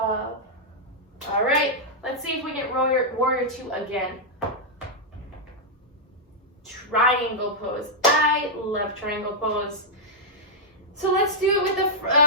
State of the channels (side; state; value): both; normal; correlation -0.06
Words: All right, let's see if we get warrior 2 again. Triangle pose. I love triangle pose. So let's do it with